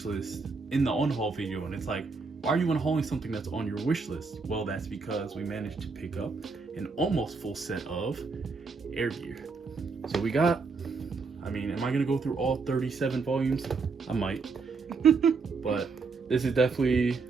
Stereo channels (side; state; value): left; quieter; 4.5 dB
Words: list in the unhaul video, and it's like, why are you unhauling something that's on your wish list? Well, that's because we managed to pick up an almost full set of Airgear. So we got, I mean, am I gonna go through all 37 volumes? I might, but this is definitely,